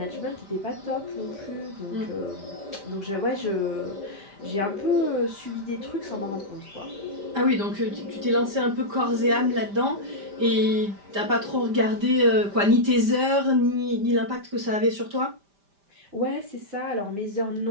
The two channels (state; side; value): late; left; 5.1 ms